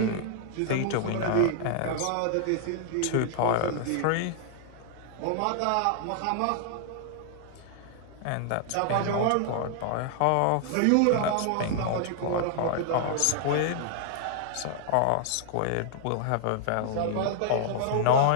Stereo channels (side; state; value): both; different; correlation -0.01